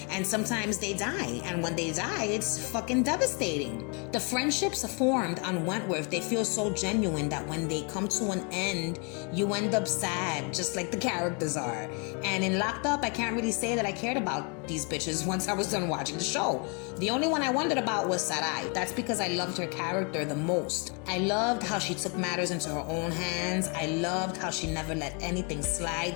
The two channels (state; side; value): quieter; right; 34.9 dB